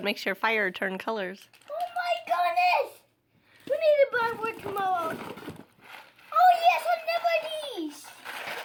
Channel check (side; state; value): both; identical; correlation 1.00